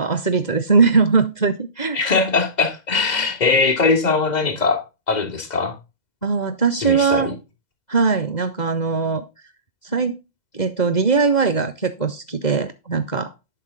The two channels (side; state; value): right; late; 2.0 ms